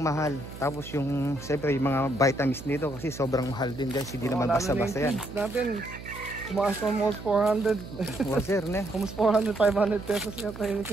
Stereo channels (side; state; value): right; noise; hum, 13 dB below the sound